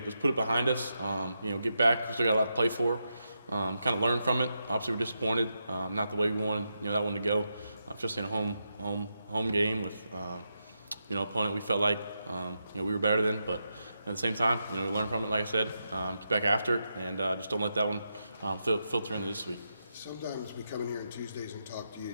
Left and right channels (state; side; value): inverted; both; correlation -0.86